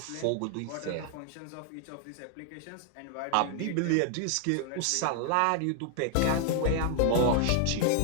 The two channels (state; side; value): different; both; correlation 0.00